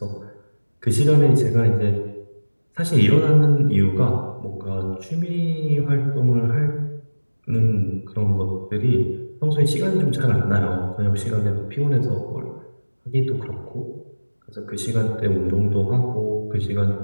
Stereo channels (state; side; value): inverted; both; correlation -1.00